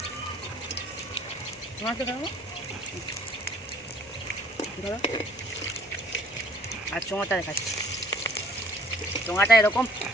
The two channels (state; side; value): normal; both; correlation 0.56